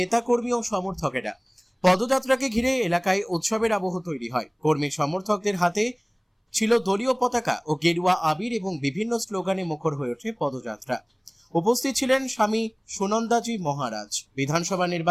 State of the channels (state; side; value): identical; both; correlation 1.00